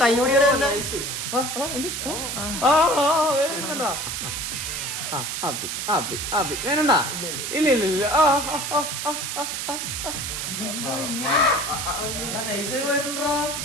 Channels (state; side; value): noise; right; hiss, 3 dB below the sound